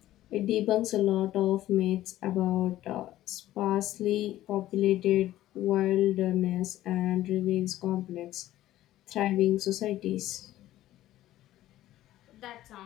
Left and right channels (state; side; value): quieter; right; 14.3 dB